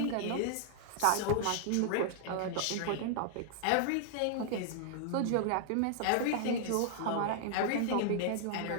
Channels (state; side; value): different; both; correlation -0.01